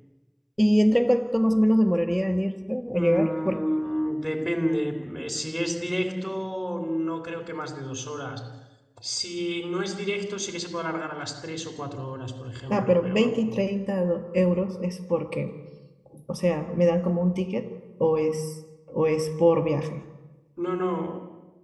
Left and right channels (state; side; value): identical; both; correlation 1.00